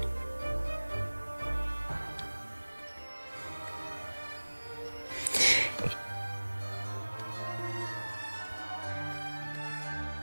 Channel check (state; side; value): inverted; both; correlation -1.00